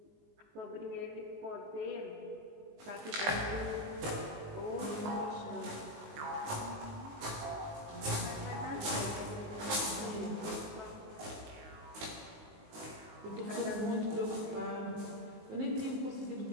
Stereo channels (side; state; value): left; late; 19 ms